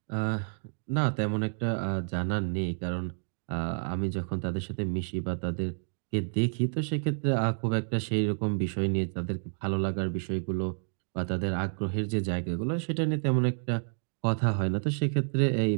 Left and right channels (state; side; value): silent; left; digital silence